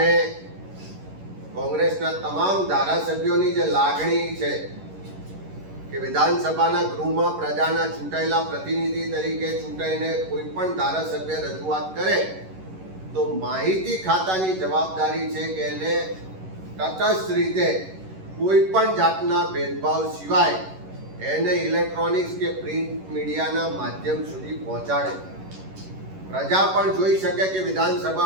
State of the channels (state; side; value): late; left; 11 ms